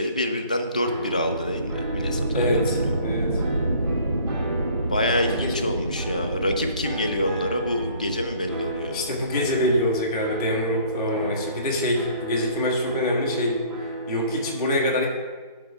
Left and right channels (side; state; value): both; inverted; correlation -0.53